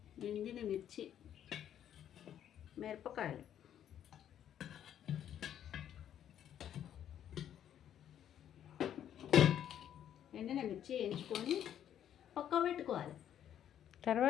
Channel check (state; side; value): quieter; right; 10.2 dB